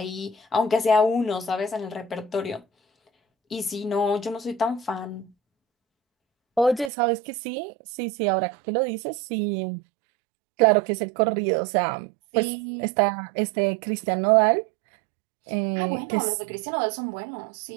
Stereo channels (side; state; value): left; drops out; at 6.9 s